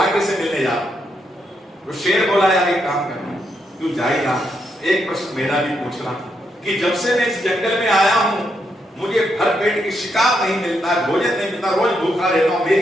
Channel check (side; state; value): both; normal; correlation 0.80